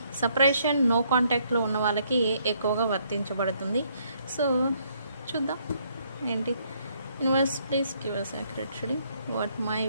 సపరేషన్, నో కాంటాక్ట్లో ఉన్న వాళ్ళకి ఎక్కువగా వర్తించబడుతుంది. సో చూద్దాం ఏంటి. Universe please give us accurate reading. What my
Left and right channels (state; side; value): inverted; both; correlation -0.69